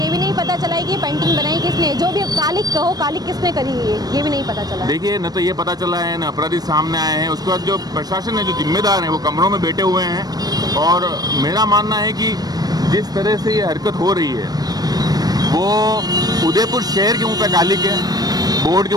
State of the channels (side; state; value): left; late; 0.19 ms